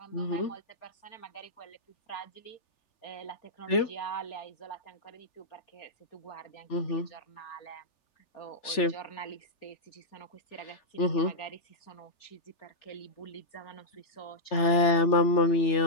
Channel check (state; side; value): late; right; 3.4 ms